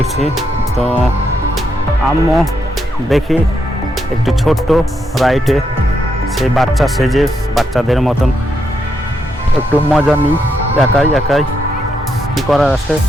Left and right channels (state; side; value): normal; both; correlation 0.80